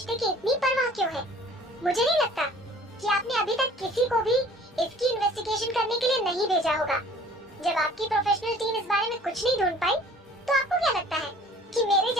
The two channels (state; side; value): normal; both; correlation 0.51